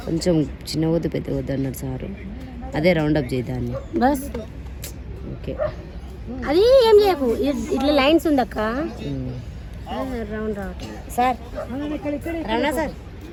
కొంచెం చిన్న వద్దు పెద్ద వద్దు అన్నారు సారు. అదే రౌండప్ చేద్దాన్ని. బస్ ఓకే, అది ఏం చేయకు, ఇట్లా లైన్స్ ఉందక్క. రౌండ్ రావట్లేదు సార్. రమణ సార్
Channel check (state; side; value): identical; both; correlation 1.00